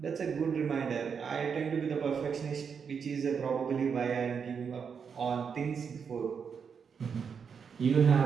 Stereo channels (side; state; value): left; quieter; 6.5 dB